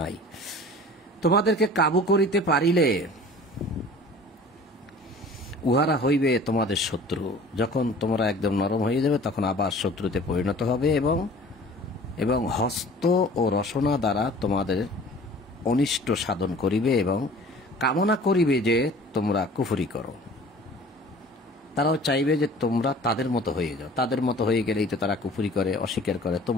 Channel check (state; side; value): normal; both; correlation 0.46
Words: তোমাদেরকে কাবু করিতে পারিলে উহারা হইবে তোমাদের শত্রু। যখন তোমরা একদম নরম হয়ে যাবে তখন আবার শত্রুতে পরিণত হবে এবং হস্ত ও রসনা দ্বারা তোমাদের অনিষ্ট সাধন করিবে এবং কামনা করিবে যে তোমরা কুফরি করো। তারাও চাইবে যে তোমরা তাদের মতো হয়ে যাও। তাদের মতো হয়ে গেলেই তো তারা কুফরি করে, অস্বীকার করে,